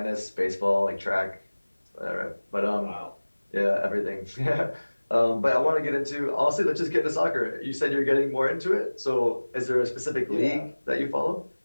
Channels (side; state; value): both; inverted; correlation -1.00